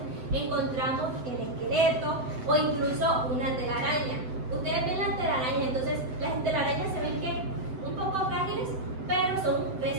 encontramos el esqueleto o incluso una telaraña. Ustedes ven las telarañas, entonces las telarañas se ven que un poco frágiles, pero son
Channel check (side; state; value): left; late; 7.8 ms